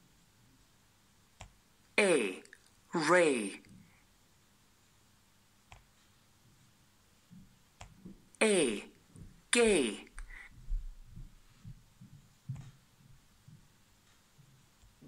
A. Ray. A. Gay.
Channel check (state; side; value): identical; both; correlation 1.00